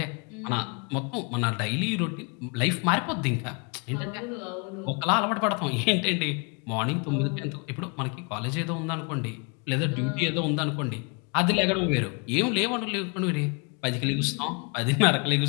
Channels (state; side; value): quieter; right; 33.8 dB